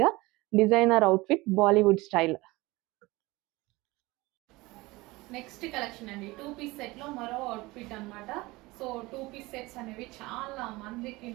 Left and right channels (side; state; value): left; quieter; 21.5 dB